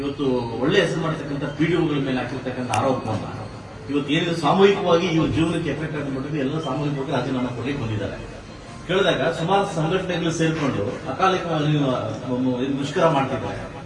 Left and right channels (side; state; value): both; identical; correlation 1.00